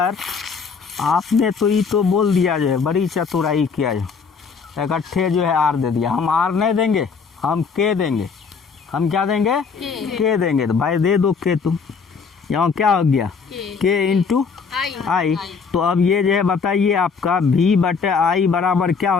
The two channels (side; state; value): right; quieter; 5.5 dB